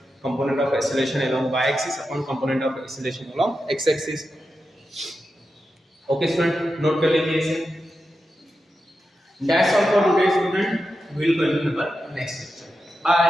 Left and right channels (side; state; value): both; normal; correlation 0.89